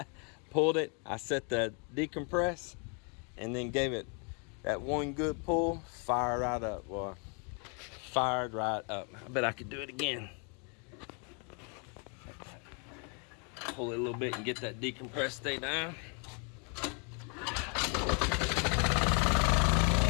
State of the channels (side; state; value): right; quieter; 36.4 dB